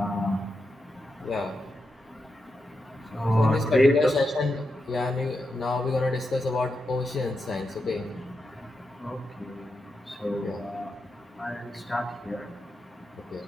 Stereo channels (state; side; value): normal; both; correlation 0.86